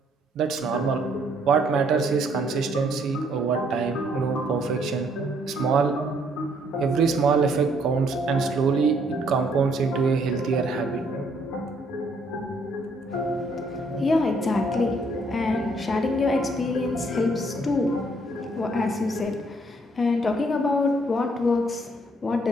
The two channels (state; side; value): normal; both; correlation 0.67